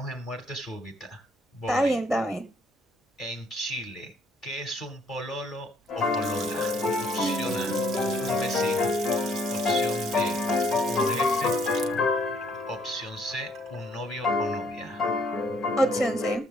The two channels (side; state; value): both; normal; correlation 0.65